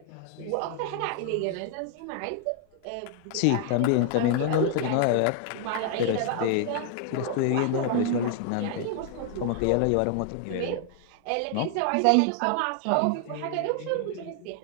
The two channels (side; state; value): both; different; correlation 0.00